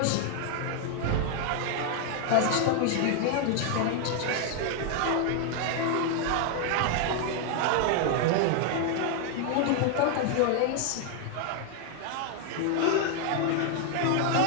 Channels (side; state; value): both; different; correlation 0.00